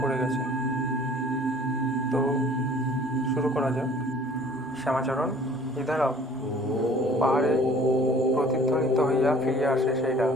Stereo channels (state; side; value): normal; both; correlation 0.52